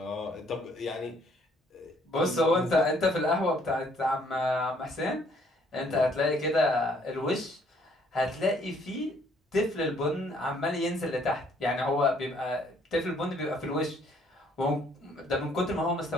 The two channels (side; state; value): both; normal; correlation 0.64